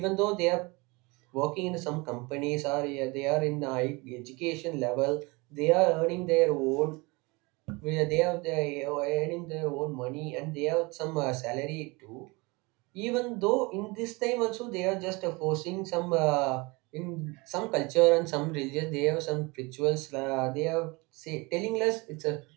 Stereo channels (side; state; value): left; quieter; 25.9 dB